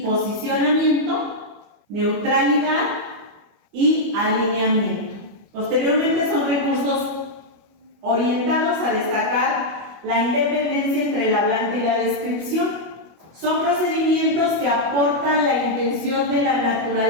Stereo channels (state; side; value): late; left; 25 ms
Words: posicionamiento, neutralidad y alineamiento. Posteriormente son recursos orientados a destacar la independencia entre el hablante y la descripción. Son procedimientos que aportan la intención de la